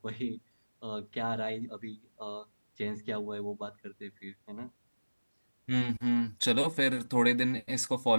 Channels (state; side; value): inverted; both; correlation -1.00